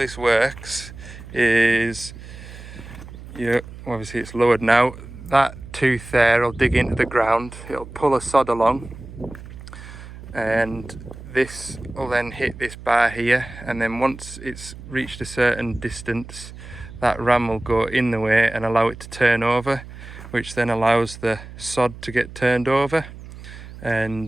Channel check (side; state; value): right; noise; hum, 15 dB below the sound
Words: works is, obviously it's lowered now, that tooth there will dig into the ground, it'll pull a sod along, and this will then hit this bar here, and then once it's reached a certain distance, that ram will go in the way and allow it to turn over, which then allows the sod to get turned over.